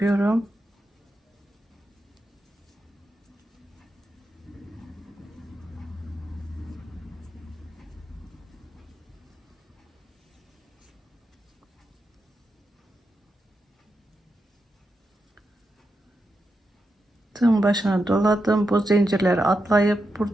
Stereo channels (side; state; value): both; normal; correlation 0.86